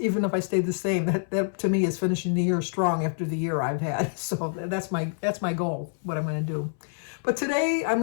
if I stay the same, that to me is finishing the year strong after the year I've had. So that's my goal, what I'm going to do. But today I'm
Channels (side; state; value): right; silent; 60 dB below the other